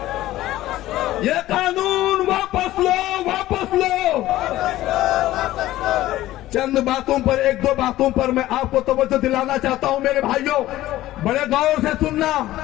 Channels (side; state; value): right; quieter; 15.4 dB